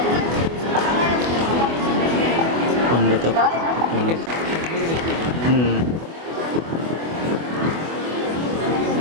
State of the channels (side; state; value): left; late; 24 ms